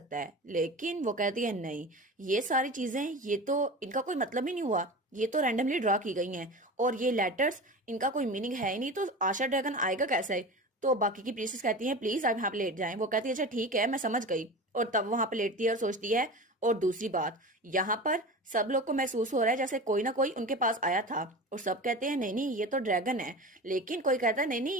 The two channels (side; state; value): both; normal; correlation 0.31